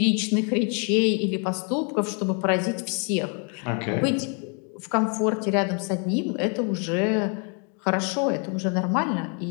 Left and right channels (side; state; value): right; quieter; 38.5 dB